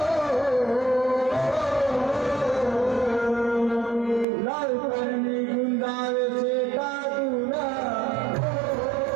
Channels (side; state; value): left; drops out; at 4.2 s